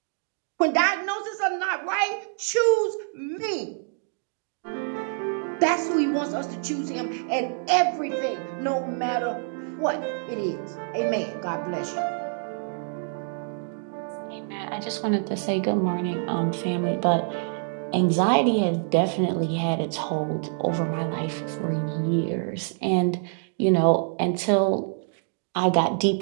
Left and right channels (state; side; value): silent; left; 59 dB below the other